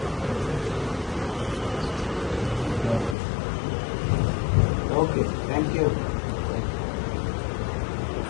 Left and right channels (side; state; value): right; drops out; at 3.2 s